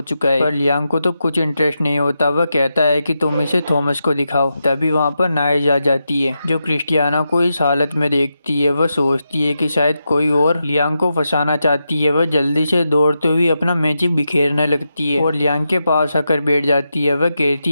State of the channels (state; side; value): inverted; both; correlation -0.87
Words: चुका है, पर लियांग को तो कुछ इंटरेस्ट नहीं होता। वह कहता है कि तुम इसे थॉमस को दिखाओ। तभी वहाँ पर नाइज आ जाती है जो क्रिस्टियाना को इस हालत में देखती है। वह सोचती है कि शायद कोई और लियांग को फंसाना चाहती है। वह जल्दी से दौड़ते हुए अपना मैजिक बिखेरने लगती है और लियांग के पास आकर बैठ जाती है। वह